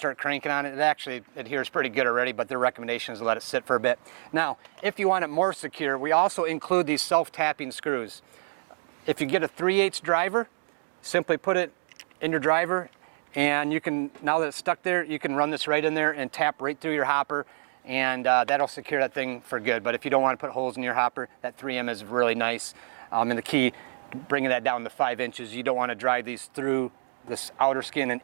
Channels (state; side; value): silent; left; digital silence